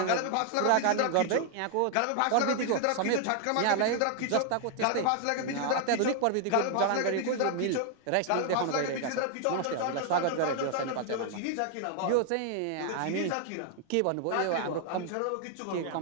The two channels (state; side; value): different; both; correlation 0.00